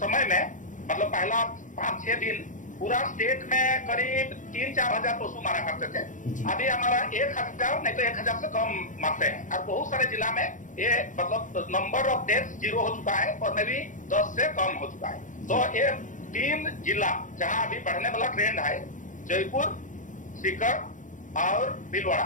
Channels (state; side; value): late; right; 0.37 ms